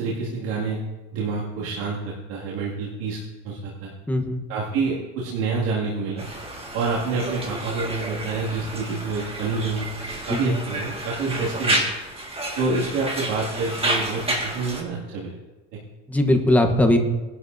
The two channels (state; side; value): normal; both; correlation 0.37